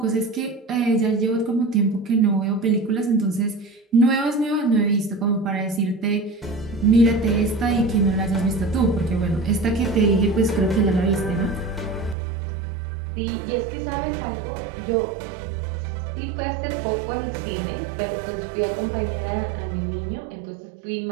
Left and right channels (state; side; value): drops out; left; at 12.2 s